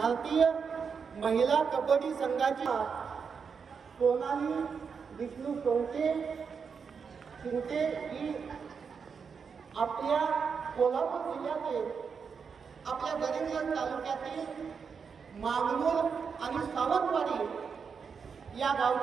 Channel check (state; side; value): quieter; left; 6.0 dB